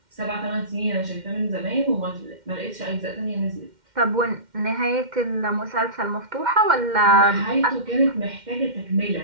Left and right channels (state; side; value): late; left; 2.1 ms